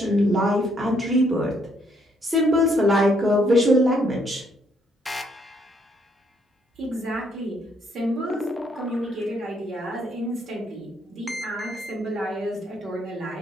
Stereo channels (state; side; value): normal; both; correlation 0.71